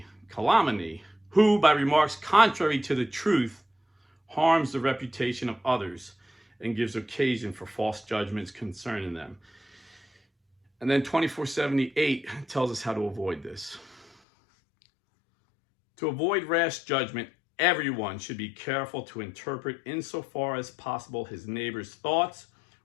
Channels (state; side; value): drops out; right; at 14.1 s